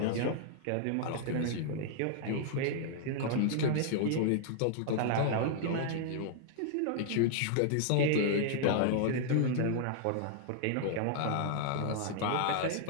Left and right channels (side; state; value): both; different; correlation -0.01